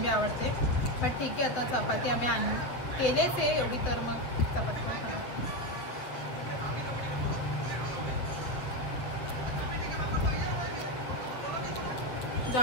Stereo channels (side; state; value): right; late; 7.6 ms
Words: आवडते. बट ठीक आहे, आता चपाती आम्ही केलेच आहे एवढी, तर मग चपाती पण खाणार.